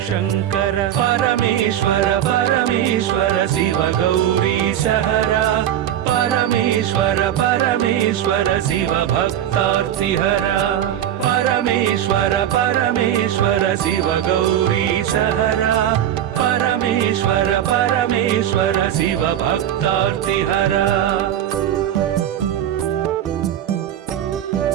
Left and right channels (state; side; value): quieter; left; 10.8 dB